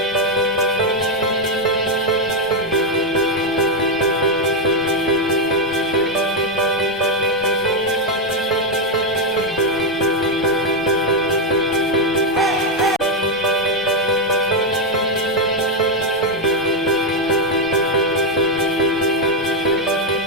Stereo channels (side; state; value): both; normal; correlation 0.03